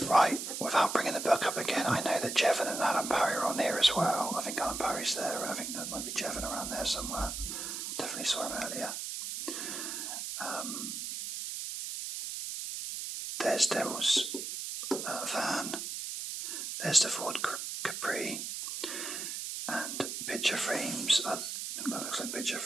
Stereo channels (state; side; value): noise; right; hiss, 5 dB below the sound